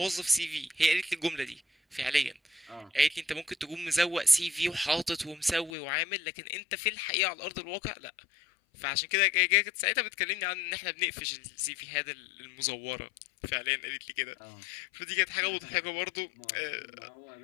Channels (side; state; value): right; drops out; at 5.7 s